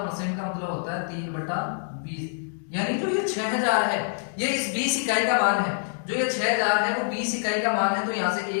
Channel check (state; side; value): silent; right; digital silence